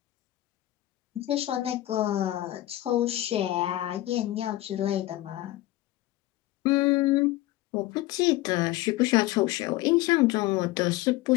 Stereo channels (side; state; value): right; quieter; 16.4 dB